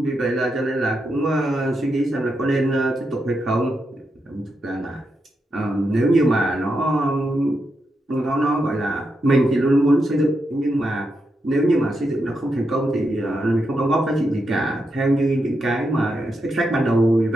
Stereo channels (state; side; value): normal; both; correlation 0.85